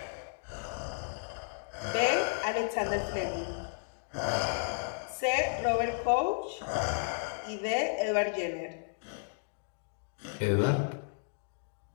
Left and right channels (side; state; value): right; silent; digital silence